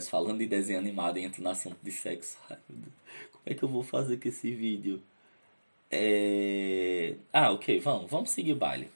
falando de desenho animado e entro no assunto de sexo. Ai, meu Deus. Como é que eu vou fazer com esse vídeo? Ok, vamos seguir o baile.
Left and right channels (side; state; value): both; inverted; correlation -1.00